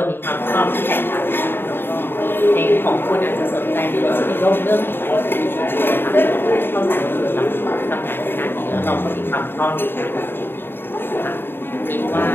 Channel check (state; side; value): late; right; 0.10 ms